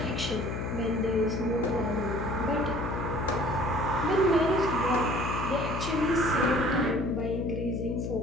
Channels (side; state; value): left; noise; hum, 3 dB below the sound